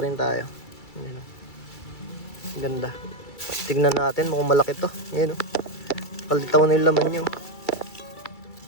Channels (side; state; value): right; late; 2.3 ms